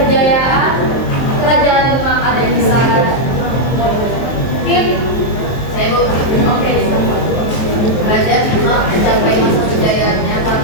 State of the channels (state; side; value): late; right; 23 ms